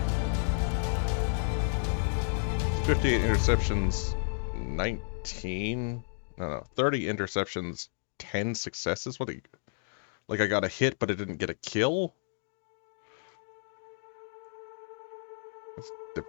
"58 interceptions, 19... No, 30 interceptions, 10 successes? What? Like I got a hit, but it didn't get a kill? That's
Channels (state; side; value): silent; right; digital silence